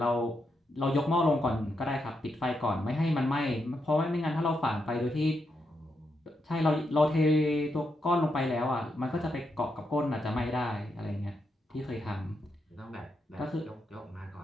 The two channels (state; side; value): normal; both; correlation 0.82